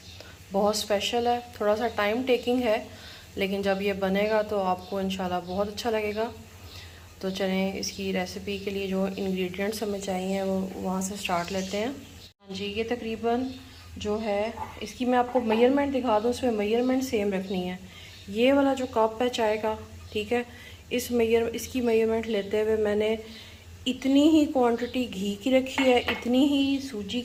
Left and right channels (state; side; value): identical; both; correlation 1.00